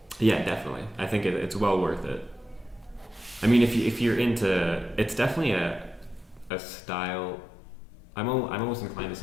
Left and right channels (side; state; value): right; drops out; at 6.5 s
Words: Yeah, definitely. I think it's well worth it. I mean, if you're into, it's definitely a style. I'm almost inclined to